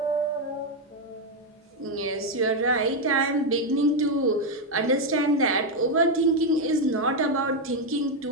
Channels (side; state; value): both; normal; correlation 0.04